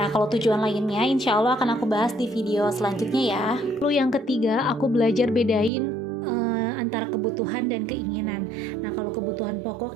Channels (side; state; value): left; drops out; at 5.7 s